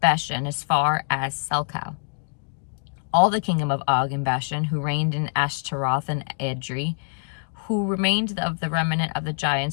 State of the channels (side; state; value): right; silent; digital silence